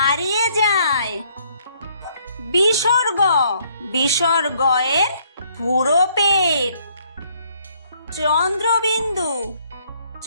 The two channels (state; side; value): inverted; both; correlation -0.66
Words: যায়। বিসর্গ বিসর্গয়ের পুরো পেট। চন্দ্রবিন্দু